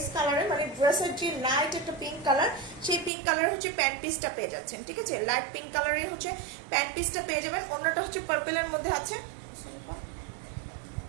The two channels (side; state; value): left; drops out; at 3.1 s